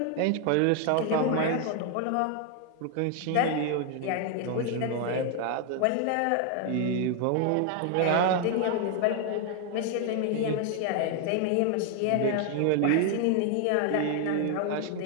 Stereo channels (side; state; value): both; different; correlation 0.00